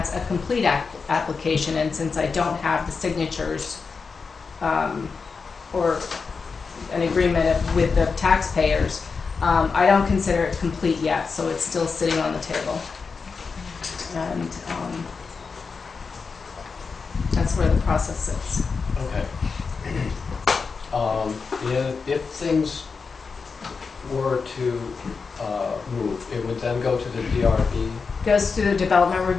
a complete application, and since I don't have the signatures or an agreement with the taxpayers, I don't consider it complete yet, so it's still sitting on the table. And that's where the process sits. Okay. If things were to move, it would then go to the DRB? Goes to the Development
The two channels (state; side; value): quieter; right; 5.0 dB